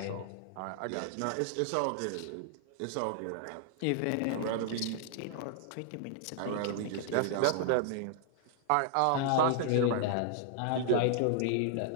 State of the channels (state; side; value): different; both; correlation -0.01